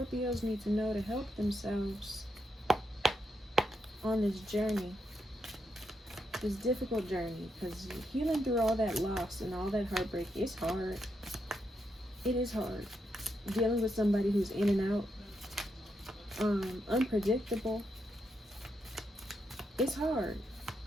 need to know to help themselves on this journey? This difficult journey, because healing through all that loss and all that heartbreak is hard. It is hard. Dealing with somebody who's in and out, unpredictable. It's hard.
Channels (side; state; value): both; normal; correlation 0.82